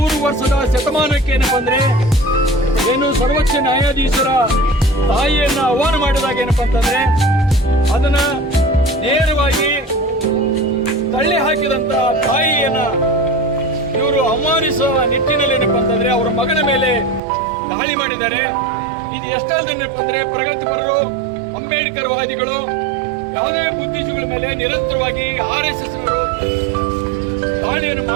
ವರ್ಷದ ಶತಮಾನಕ್ಕೆ ಏನಪ್ಪ ಅಂದ್ರೆ ಏನು ಸರ್ವೋಚ್ಚ ನ್ಯಾಯಾಧೀಶರ ತಾಯಿಯನ್ನ ಆಹ್ವಾನ ಮಾಡಿದಾಗ ಏನಪ್ಪ ಅಂತಂದ್ರೆ ಅದನ್ನ ನೇರವಾಗಿ ತಳ್ಳಿ ಹಾಕಿದಂತ ತಾಯಿಯನ್ನ ಇವರು ಅವಮಾನಿಸುವ ನಿಟ್ಟಿನಲ್ಲಿ ಏನಪ್ಪ ಅಂತಂದ್ರೆ ಅವರ ಮಗನ ಮೇಲೆ ದಾಳಿ ಮಾಡಿದ್ದಾರೆ. ಇದು ಎಷ್ಟಲ್ದೇನಪ್ಪ ಅಂದ್ರೆ ಪ್ರಗತಿಪರರು, ಅಂಬೇಡ್ಕರ್ ವಾದಿಗಳು, ಯಾವುದೇ ಬುದ್ಧಿಜೀವಿಗಳ ಮೇಲೆ ನಿರಂತರವಾಗಿ RSS ದಾಳಿಯನ್ನು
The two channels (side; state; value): left; drops out; at 17.2 s